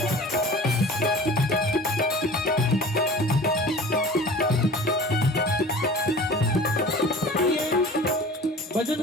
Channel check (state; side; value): normal; both; correlation 0.41